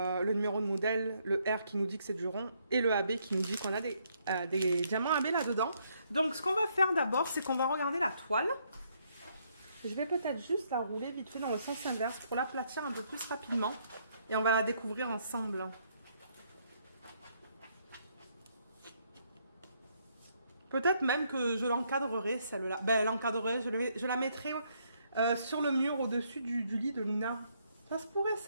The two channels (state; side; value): inverted; both; correlation -0.72